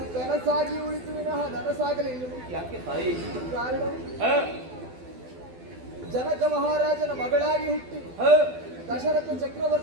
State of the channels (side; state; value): left; late; 12 ms